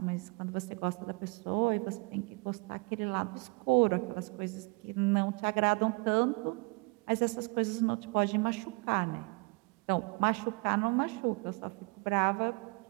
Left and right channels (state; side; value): quieter; left; 29.7 dB